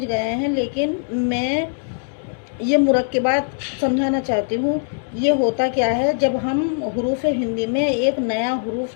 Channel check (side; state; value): right; silent; digital silence